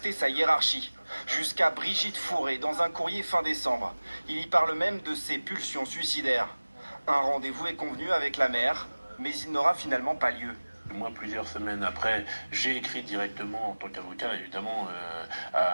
sa hiérarchie, jusqu'à Brigitte Fourré dans un courrier fin décembre. Il y parle même de ses pulsions suicidaires. Un rendez-vous est convenu avec la maire, mais il n'aura finalement pas lieu. Moi, plusieurs semaines après, j'ai écrit directement en tant qu'avocat, évidemment,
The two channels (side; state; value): both; inverted; correlation -1.00